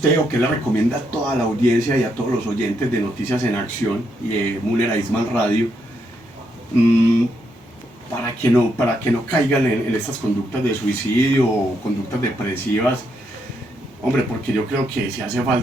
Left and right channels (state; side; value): normal; both; correlation 0.78